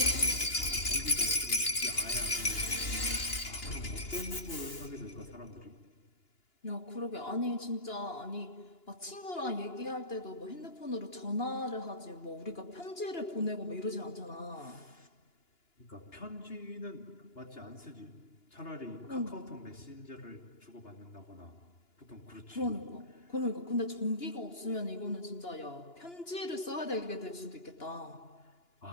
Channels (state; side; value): late; right; 2.9 ms